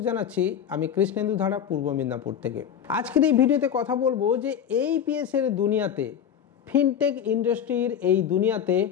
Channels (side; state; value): right; quieter; 8.7 dB